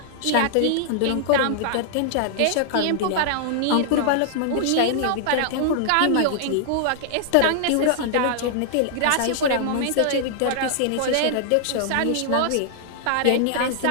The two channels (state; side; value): different; both; correlation -0.01